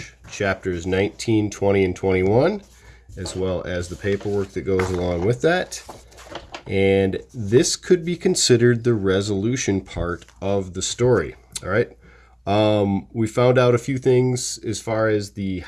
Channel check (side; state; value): both; identical; correlation 1.00